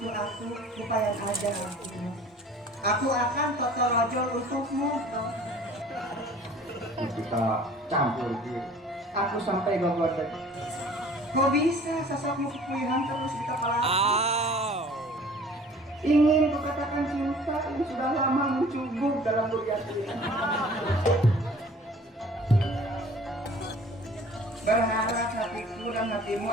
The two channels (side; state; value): both; normal; correlation 0.49